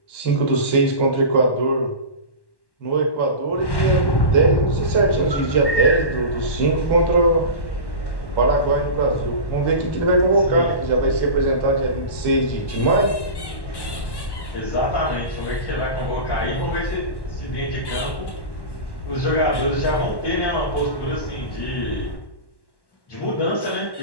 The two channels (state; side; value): late; right; 1.1 ms